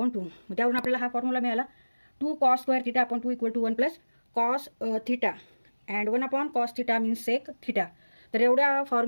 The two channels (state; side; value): inverted; both; correlation -1.00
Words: 2. मग त्यावरून आपल्याला हा फॉर्म्युला मिळाला 2 cos square theta upon 2 equal to 1 plus cos theta and 1 upon cos theta means sec theta. तर एवढ्या